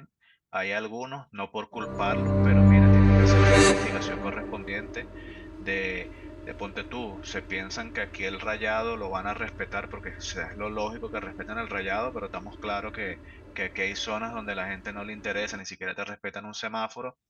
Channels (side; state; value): both; identical; correlation 1.00